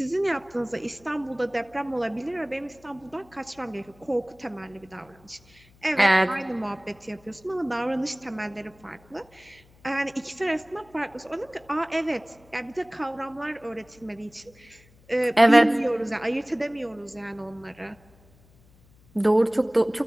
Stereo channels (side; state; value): left; noise; hum, 28 dB below the sound